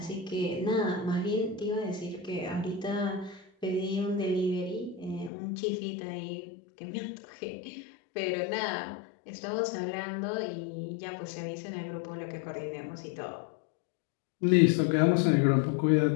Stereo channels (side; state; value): right; drops out; at 5.3 s